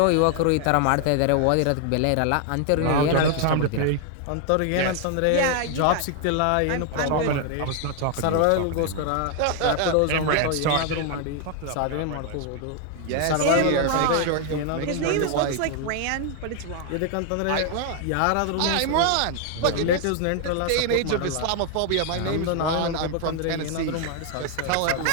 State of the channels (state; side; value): different; both; correlation 0.00